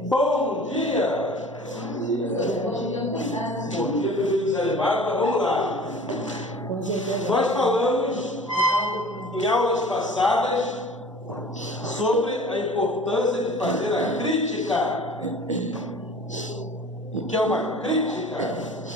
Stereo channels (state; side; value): normal; both; correlation 0.44